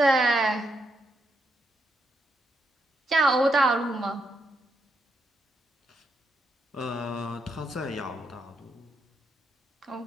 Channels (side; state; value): both; normal; correlation 0.81